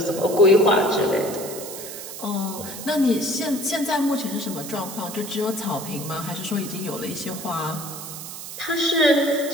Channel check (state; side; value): noise; right; hiss, 10 dB below the sound